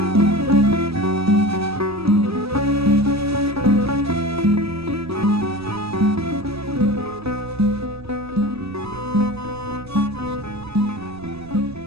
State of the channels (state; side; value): noise; right; rumble, 20 dB below the sound